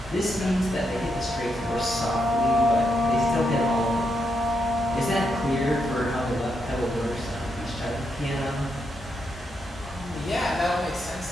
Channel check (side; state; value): both; normal; correlation 0.81